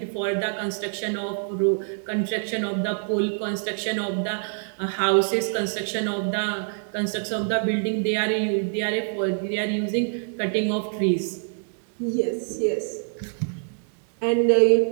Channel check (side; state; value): left; silent; 60 dB below the other